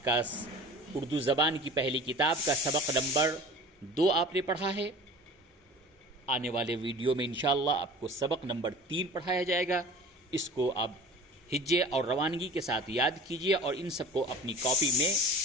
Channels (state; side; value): normal; both; correlation 0.40